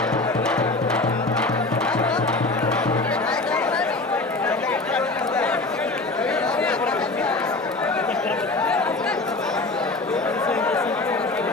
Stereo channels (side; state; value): right; quieter; 3.2 dB